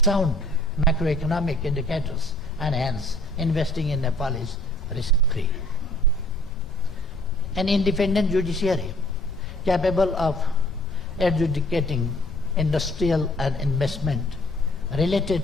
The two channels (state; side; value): noise; left; rumble, 12 dB below the sound